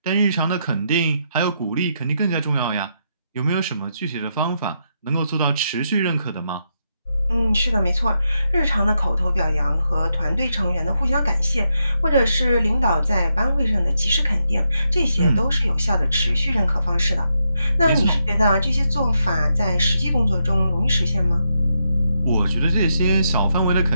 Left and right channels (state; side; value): inverted; both; correlation -0.82